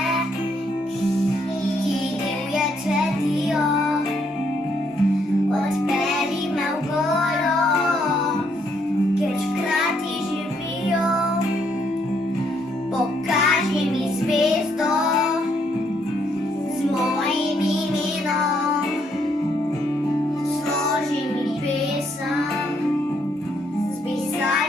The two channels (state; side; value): normal; both; correlation 0.72